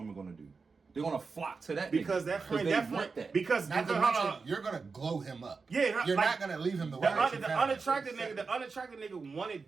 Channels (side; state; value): left; quieter; 4.6 dB